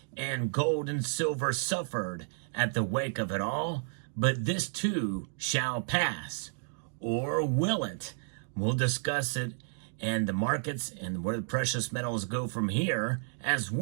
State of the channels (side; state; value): left; silent; digital silence